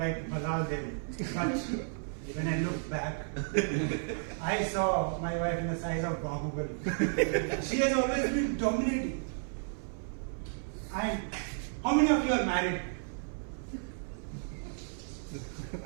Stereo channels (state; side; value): silent; left; 56 dB below the other